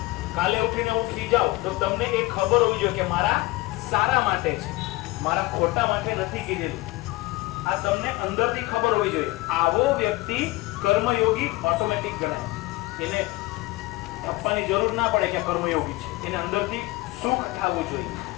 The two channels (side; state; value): right; quieter; 20.8 dB